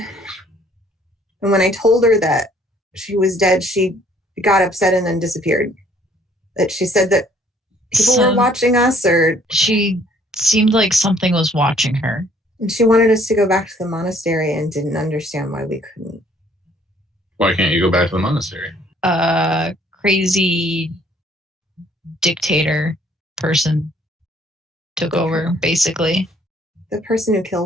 And when I told her that she was dead, she got upset and then disappeared. That she said that people were watching us, or she seemed like something was watching her. And she wanted us to go back to the monastery and didn't understand why we couldn't. Why can't you go back to the monastery? Crazy dictator person took over, basically. The person who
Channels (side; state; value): both; normal; correlation 0.61